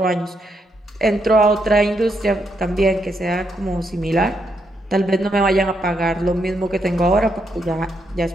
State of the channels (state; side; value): normal; both; correlation 0.79